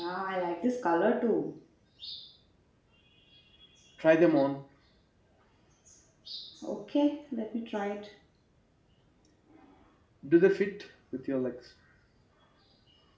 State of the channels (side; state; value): both; identical; correlation 1.00